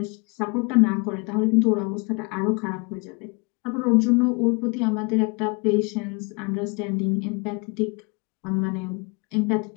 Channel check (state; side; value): quieter; right; 30.7 dB